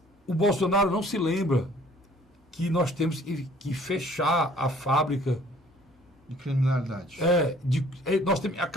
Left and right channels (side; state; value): both; normal; correlation 0.55